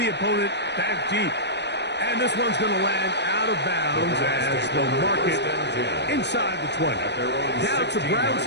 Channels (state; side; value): late; right; 0.50 ms